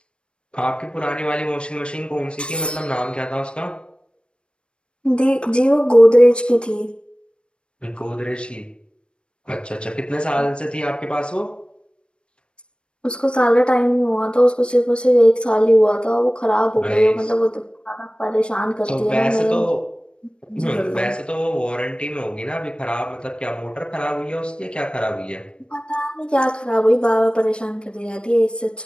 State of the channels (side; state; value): right; late; 0.056 ms